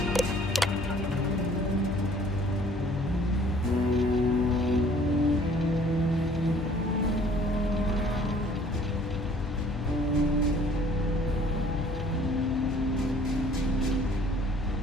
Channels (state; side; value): normal; both; correlation 0.55